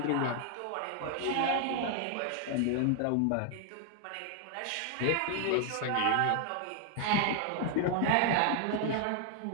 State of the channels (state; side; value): different; both; correlation 0.00